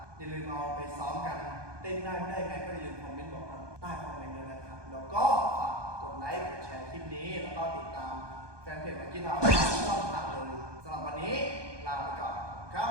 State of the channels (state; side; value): late; left; 1.2 ms